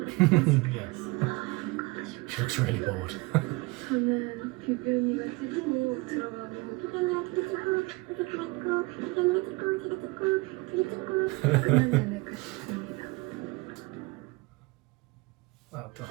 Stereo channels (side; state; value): left; quieter; 24.9 dB